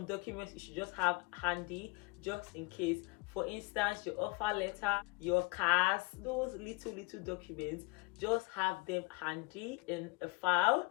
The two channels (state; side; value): quieter; right; 27.2 dB